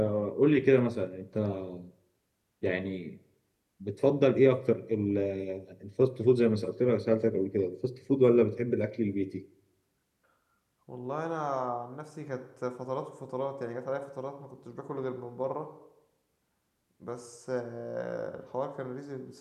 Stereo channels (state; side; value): identical; both; correlation 1.00